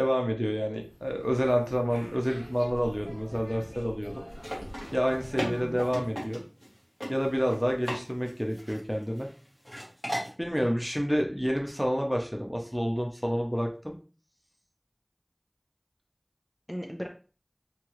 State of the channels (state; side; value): identical; both; correlation 1.00